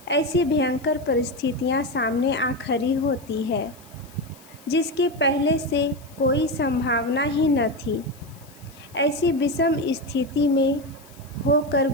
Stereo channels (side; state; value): left; noise; hiss, 25 dB below the sound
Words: ऐसी भयंकर परिस्थितियां सामने आ खड़ी होती है जिसके पहले से कोई संभावना ही न थी। ऐसी विषम स्थिति में होकर